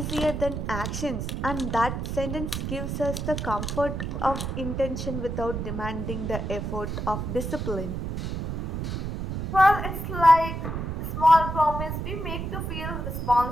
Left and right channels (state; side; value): noise; right; rumble, 3 dB below the sound